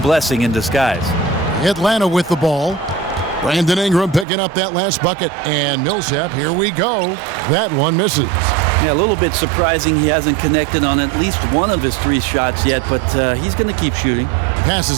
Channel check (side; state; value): left; drops out; at 4.2 s